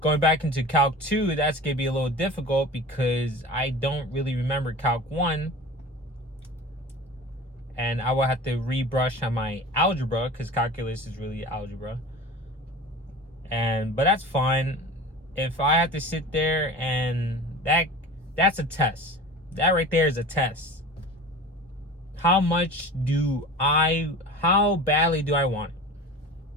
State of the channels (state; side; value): normal; both; correlation 0.36